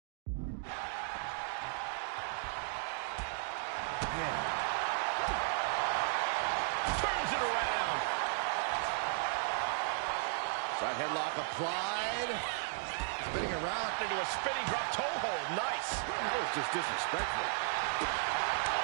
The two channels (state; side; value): silent; left; digital silence